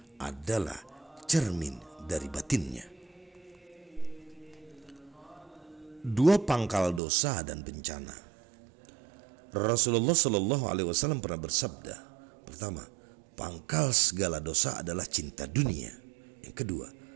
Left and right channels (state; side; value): drops out; left; at 7.0 s